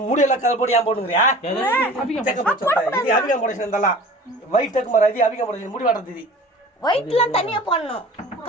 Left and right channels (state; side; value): normal; both; correlation 0.43